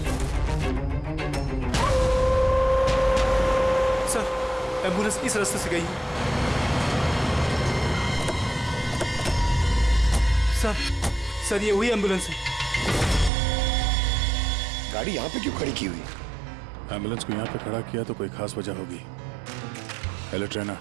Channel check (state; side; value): drops out; left; at 13.3 s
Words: सर एम्बुलेंस इस रास्ते से गई है। सर ये वही एम्बुलेंस है। गाड़ी यहाँ पे क्यों खड़ी की हुई? एम्बुलेंस को यहाँ पे खड़ा किया तो कोई खास वजह होगी। हेलो ट्रेना,